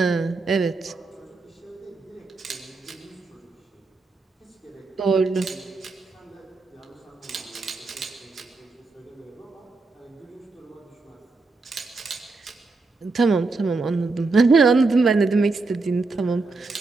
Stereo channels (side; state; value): left; quieter; 3.8 dB